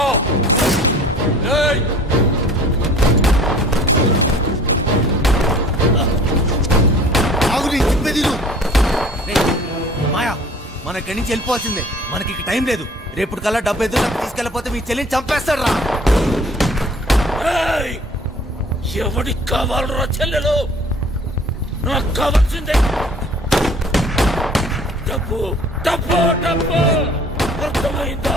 మాయా, మన ఇక్కడి నుంచి వెళ్ళిపోవాల్సిందే. మనకి ఇక టైం లేదు. రేపు కల్లా డబ్బు ఎదురు తీసుకెళ్ళిపోతే మీ చెల్లిని చంపేస్తాడు రా. ఎవడికి కావాలరా చెల్లెలు? నాకు కావాల్సిందే డబ్బు, డబ్బు, డబ్బు. అర్థమైందా?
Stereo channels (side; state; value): both; normal; correlation 0.50